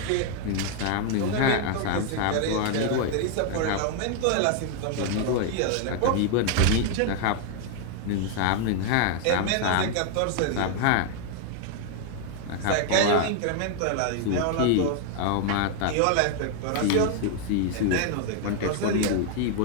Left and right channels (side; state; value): both; different; correlation 0.00